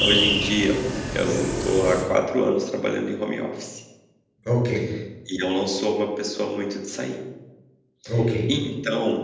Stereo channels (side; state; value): both; identical; correlation 1.00